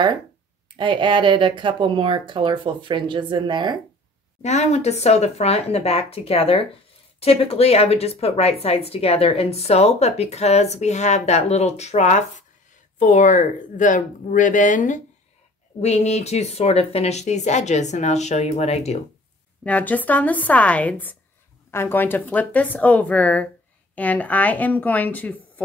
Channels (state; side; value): normal; both; correlation 0.49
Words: I added a couple more colorful fringes in there. Now I want to sew the front and the back together. Typically I would just put right sides together and sew, but because we have that little trough for the ribbon, we need to sort of finish these edges, and I'll show you what I do. Now just on the sides, I'm going to flip this over, and I am going to